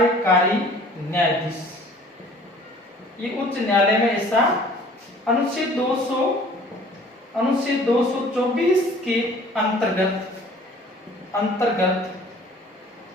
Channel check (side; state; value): both; normal; correlation 0.51